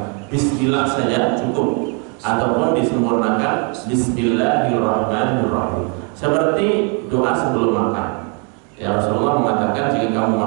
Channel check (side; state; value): left; quieter; 36.6 dB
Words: bismillah saja cukup, ataupun disempurnakan bismillahirrahmanirrahim. Seperti doa sebelum makan. Ya, Rasulullah mengatakan jika kamu